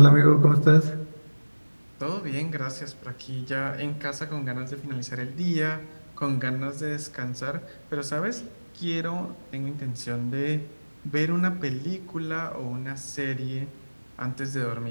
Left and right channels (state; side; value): inverted; both; correlation -1.00